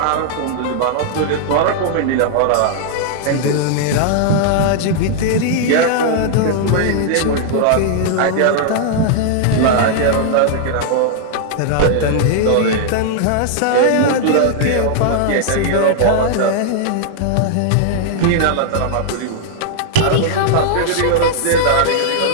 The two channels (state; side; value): different; both; correlation -0.01